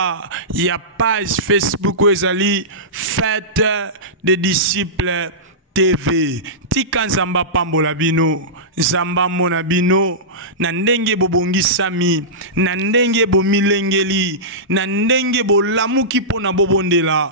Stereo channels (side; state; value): both; normal; correlation -0.17